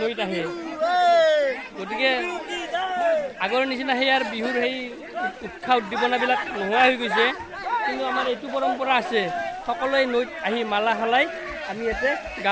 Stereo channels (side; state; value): both; identical; correlation 1.00